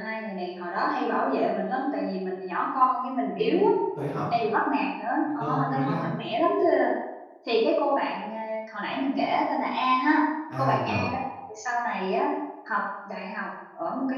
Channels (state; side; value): identical; both; correlation 1.00